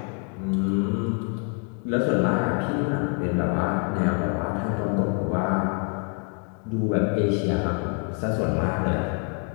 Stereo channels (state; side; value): quieter; right; 38.3 dB